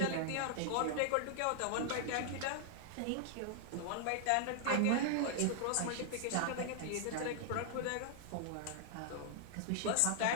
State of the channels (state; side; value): different; both; correlation -0.01